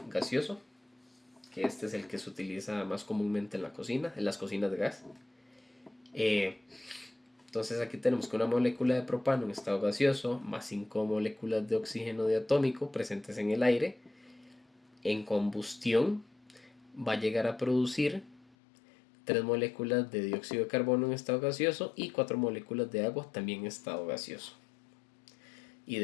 gaseoso, que este es el que se utiliza más comúnmente en la cocina, en las cocinas de gas. Entonces aquí tenemos que una molécula de propano en estado gaseoso más 5 moléculas de oxígeno diatómico presentes en el aire, en combustión va a llegar a producir 3 moléculas de dióxido de carbono en estado gaseoso y 4 moléculas de agua también en estado gaseoso. Y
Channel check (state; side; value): drops out; right; at 18.6 s